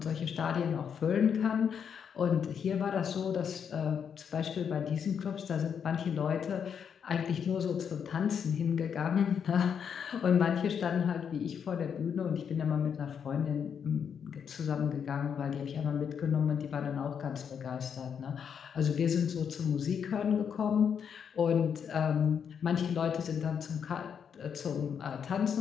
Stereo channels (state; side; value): quieter; right; 7.4 dB